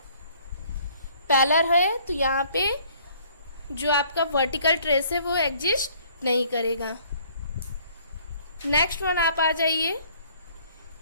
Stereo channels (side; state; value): both; inverted; correlation -0.58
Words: पैरेलल है, तो यहाँ पे जो आपका वर्टिकल ट्रेस है वो एग्जिस्ट नहीं करेगा। नेक्स्ट वन आप आ जाइए,